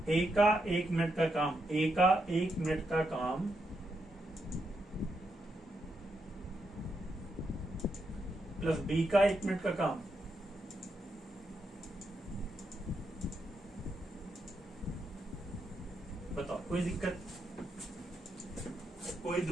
ए का 1 मिनट का काम, ए का 1 मिनट का काम प्लस बी का 1 मिनट का काम। बताओ कोई दिक्कत, कोई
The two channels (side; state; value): both; normal; correlation 0.82